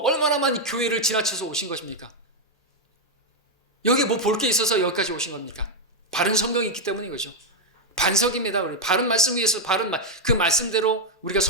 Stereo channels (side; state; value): both; normal; correlation 0.01